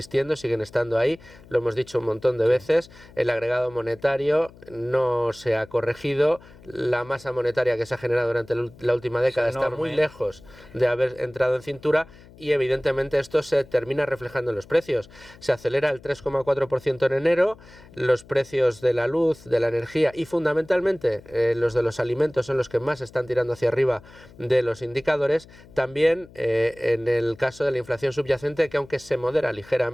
siguen estando ahí, lo hemos dicho un montón de veces. El agregado monetario no se ha corregido, la masa monetaria que se ha generado durante la última década está muy lejos de haber entrado en cintura, y evidentemente esto se termina reflejando en los precios. Se acelera el 3,4% en enero, los precios de la luz, de la energía y fundamentalmente los de los alimentos son los que más están tirando hacia arriba de los indicadores. También en el caso de la inflación subyacente, que aunque se modera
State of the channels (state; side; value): noise; left; hum, 22 dB below the sound